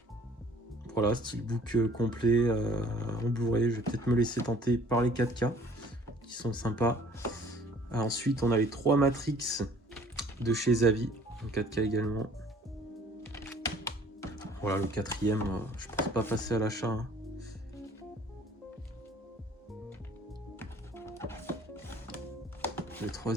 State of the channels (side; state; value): both; normal; correlation 0.54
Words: Voilà, steelbook complet en Blu-ray. Je vais peut-être me laisser tenter par les 4K qui sont sympas. Ensuite, on a les 3 Matrix de chez Zavi en 4K également. Voilà, le quatrième, je pense pas passer à l'achat. Hein. Le